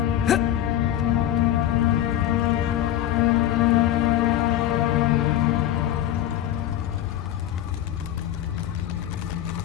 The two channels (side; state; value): right; quieter; 12.1 dB